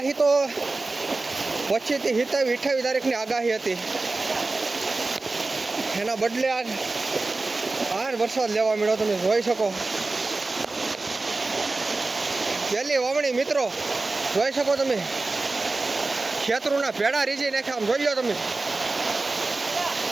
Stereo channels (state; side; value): quieter; left; 3.4 dB